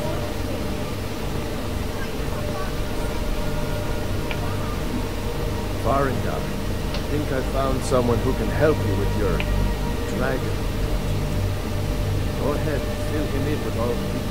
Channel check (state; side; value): identical; both; correlation 1.00